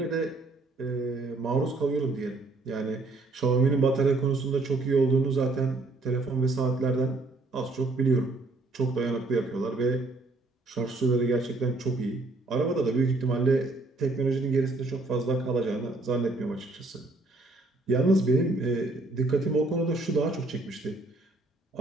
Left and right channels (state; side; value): quieter; left; 3.2 dB